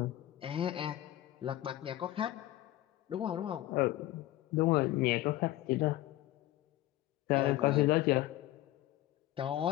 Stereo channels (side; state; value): right; quieter; 15.3 dB